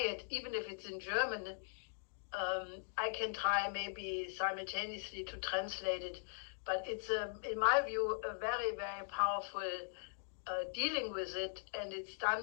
it, even if it's in German. I can try maybe simultaneously to translate it. But it's, in my view, a very, very powerful dealing with it. And it's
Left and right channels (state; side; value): silent; right; digital silence